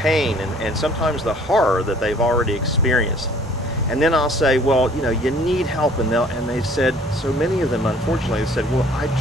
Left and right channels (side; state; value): both; normal; correlation 0.55